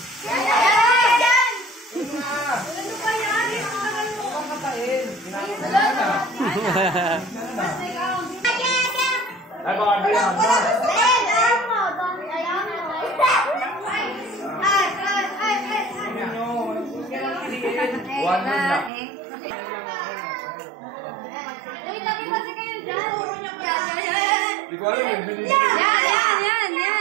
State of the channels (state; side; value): drops out; left; at 18.9 s